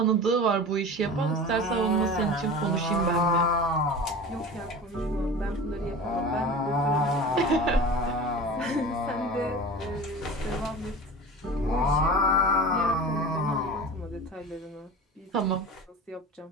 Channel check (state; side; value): normal; both; correlation 0.34